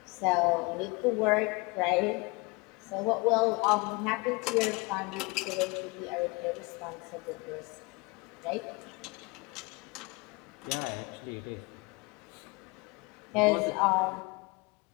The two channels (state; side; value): quieter; right; 27.2 dB